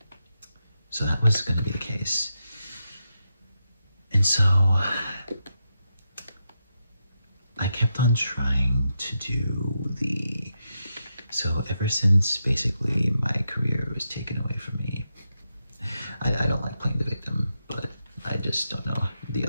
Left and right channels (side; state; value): both; inverted; correlation -0.85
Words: So that was gonna be the case. And so I kept on trying to do so ever since basically my career was taken away from me. I don't like playing the victim, but I just don't know the